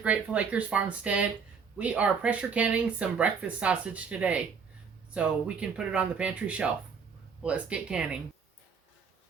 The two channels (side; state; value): left; quieter; 6.0 dB